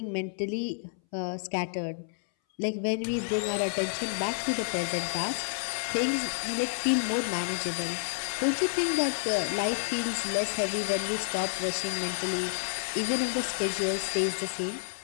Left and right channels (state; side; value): silent; right; 58 dB below the other